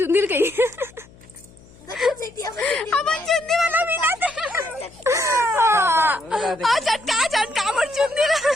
गई। अब चुंदी वाला बिना थे चटका चटका मोर चुंदी।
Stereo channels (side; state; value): left; noise; hum, 25 dB below the sound